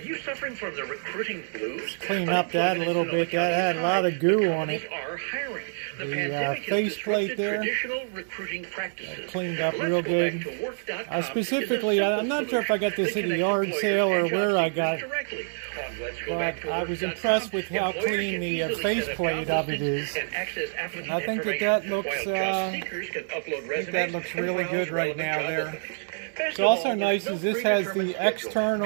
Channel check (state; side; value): silent; left; digital silence